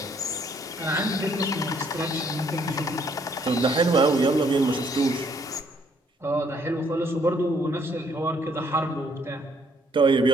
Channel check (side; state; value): both; normal; correlation 0.66